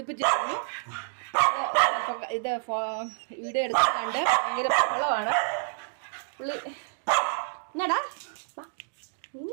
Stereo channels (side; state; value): left; silent; digital silence